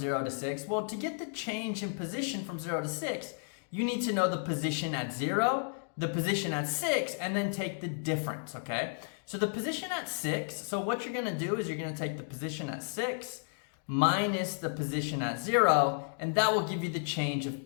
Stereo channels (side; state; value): right; silent; 56 dB below the other